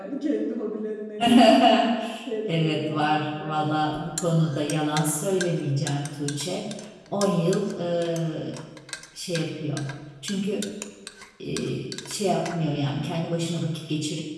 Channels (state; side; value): identical; both; correlation 1.00